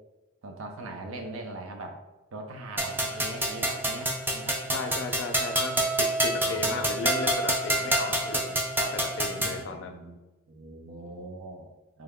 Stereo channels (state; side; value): normal; both; correlation 0.17